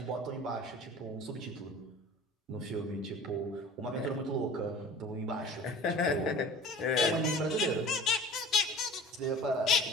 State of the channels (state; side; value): normal; both; correlation 0.42